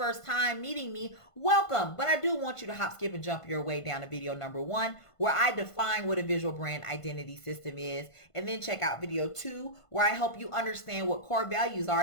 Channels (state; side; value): late; right; 1.5 ms